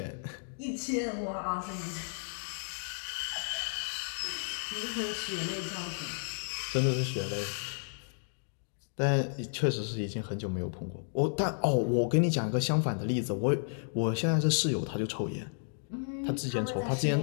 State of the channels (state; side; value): silent; right; digital silence